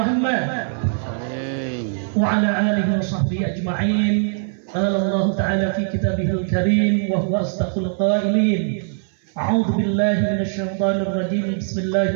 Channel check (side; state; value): left; silent; 65 dB below the other